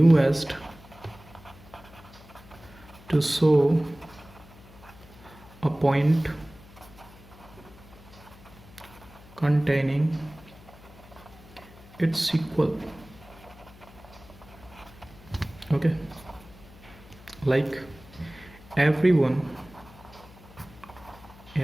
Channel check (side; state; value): left; noise; hum, 21 dB below the sound